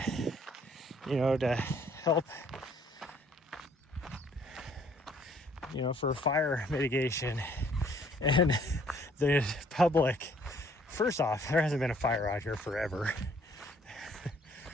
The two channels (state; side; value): normal; both; correlation 0.61